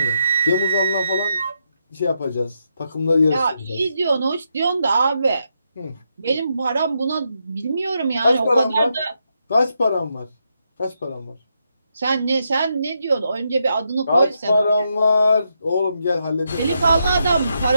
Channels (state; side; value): inverted; both; correlation -0.81